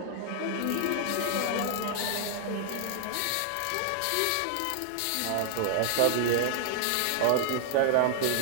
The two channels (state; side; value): different; both; correlation 0.00